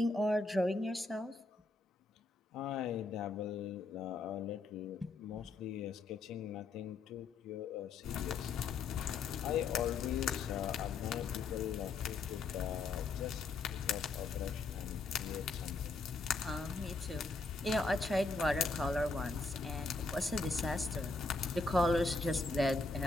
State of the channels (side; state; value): right; quieter; 3.7 dB